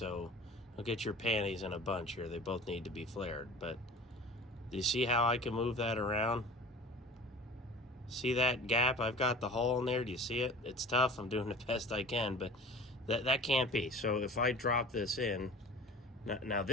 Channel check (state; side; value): normal; both; correlation 0.40